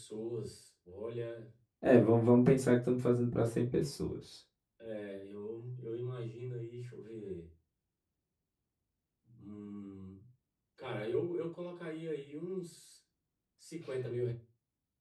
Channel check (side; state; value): both; identical; correlation 1.00